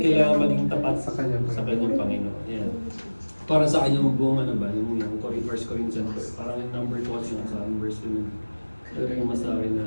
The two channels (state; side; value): inverted; both; correlation -1.00